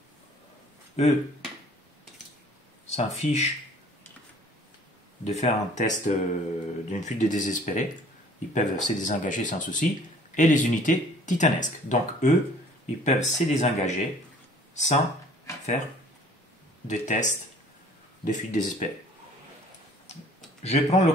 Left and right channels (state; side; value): normal; both; correlation 0.53